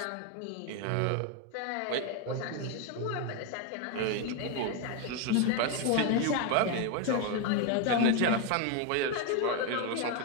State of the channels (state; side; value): different; both; correlation 0.01